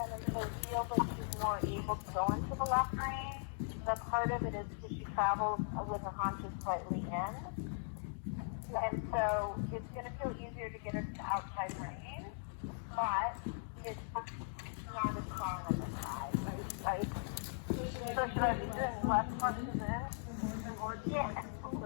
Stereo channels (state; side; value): silent; right; digital silence